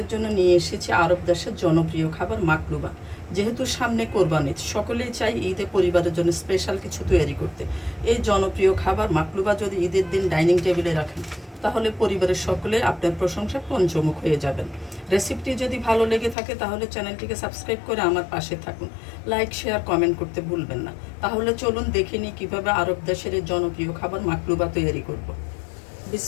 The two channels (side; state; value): right; drops out; at 16.4 s